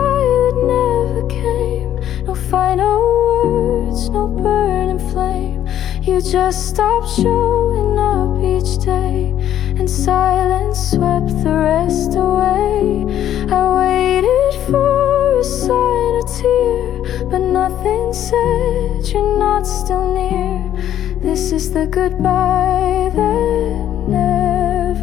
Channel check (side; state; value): right; quieter; 11.2 dB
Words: that never came. No final words, no burning flame. You just stopped showing up each day, and silence swept the rest away. I waited for a sign, a tear, but nothing said you're not still near. This is the goodbye that